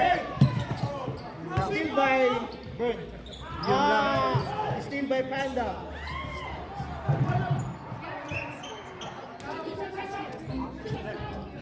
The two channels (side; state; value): both; identical; correlation 1.00